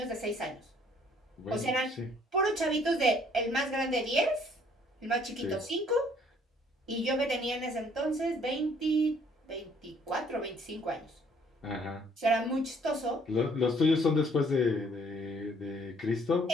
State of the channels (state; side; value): normal; both; correlation 0.61